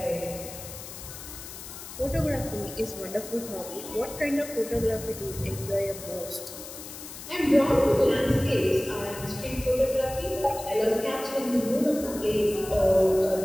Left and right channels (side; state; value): left; noise; hiss, 12 dB below the sound